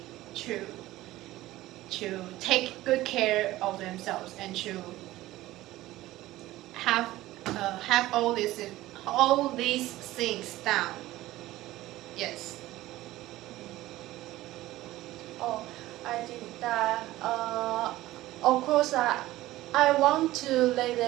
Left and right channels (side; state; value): left; quieter; 16.5 dB